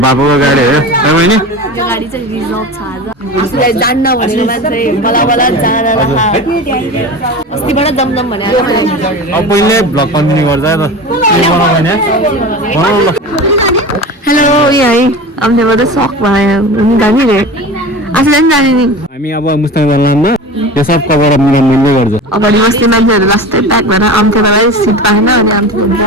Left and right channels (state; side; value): normal; both; correlation 0.31